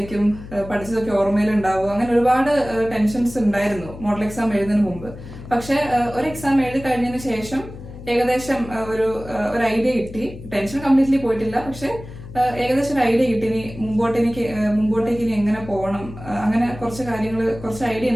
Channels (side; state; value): left; noise; hum, 14 dB below the sound